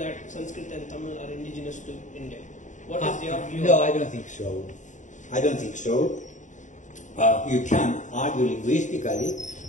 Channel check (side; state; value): right; late; 0.36 ms